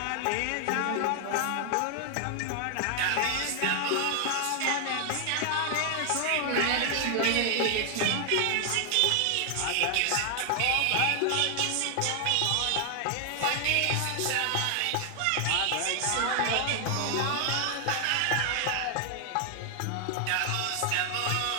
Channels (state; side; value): different; both; correlation 0.00